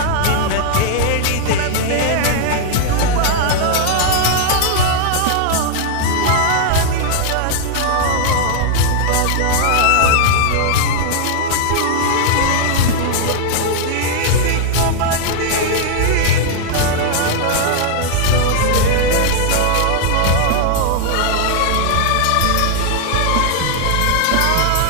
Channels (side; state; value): both; different; correlation 0.00